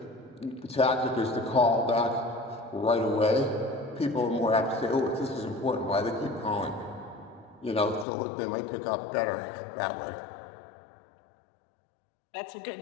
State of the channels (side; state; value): right; drops out; at 8.1 s